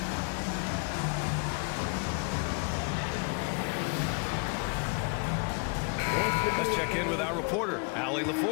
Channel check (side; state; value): right; quieter; 33.4 dB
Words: Let's check in with our reporter, Allie